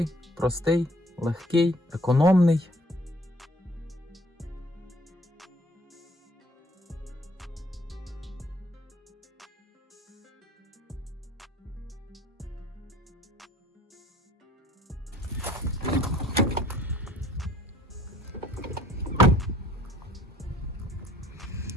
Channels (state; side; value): normal; both; correlation 0.58